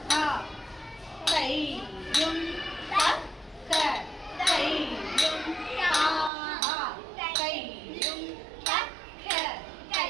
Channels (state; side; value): drops out; left; at 6.3 s